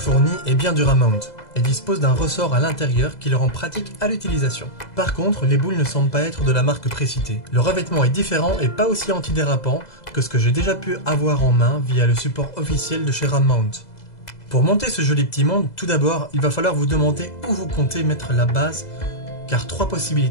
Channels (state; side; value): late; right; 2.0 ms